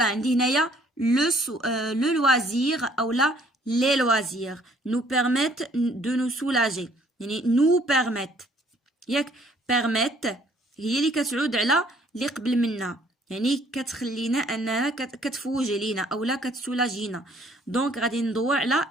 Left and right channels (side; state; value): both; normal; correlation 0.60